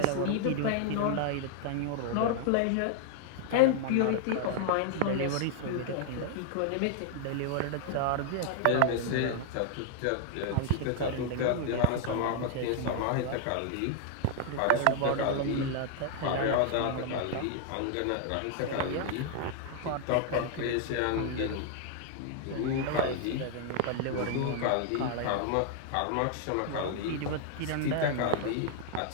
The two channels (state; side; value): different; both; correlation 0.00